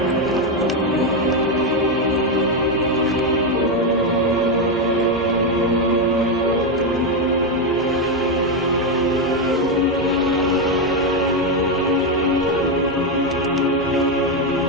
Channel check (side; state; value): both; normal; correlation 0.06